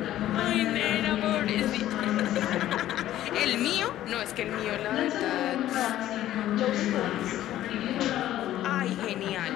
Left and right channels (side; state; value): right; quieter; 13.3 dB